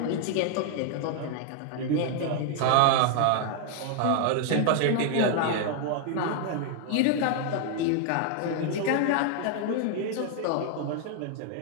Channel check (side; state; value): both; different; correlation 0.00